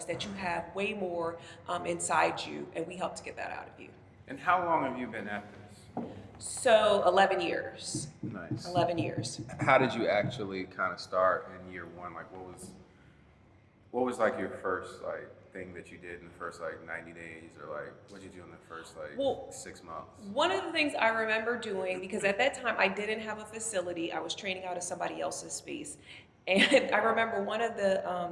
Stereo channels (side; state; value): both; identical; correlation 1.00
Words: that you have way more inside you, and we help to get that out of you. And how long have you been at this? So 11 years. Nice. 11 years. How did you actually kind of start in year one? Like, what was like your first like thing that you did in the first like 90 days, or like what did you do in the first like 6 months? One of the things I remember doing, because at that time I didn't have a facility, I was training out of somebody else's space. And I remember one of